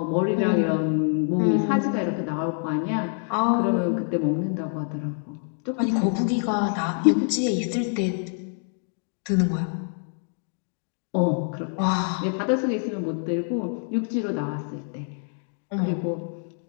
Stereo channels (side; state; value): right; silent; 55 dB below the other